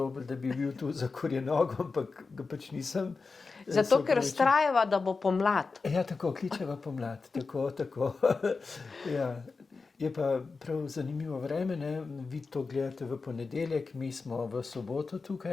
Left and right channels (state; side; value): quieter; right; 4.3 dB